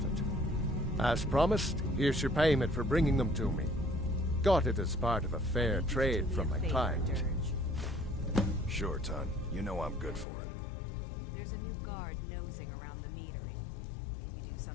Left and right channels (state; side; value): drops out; right; at 10.2 s